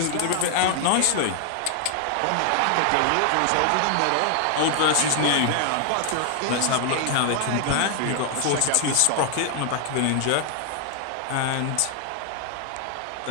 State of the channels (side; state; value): both; different; correlation 0.00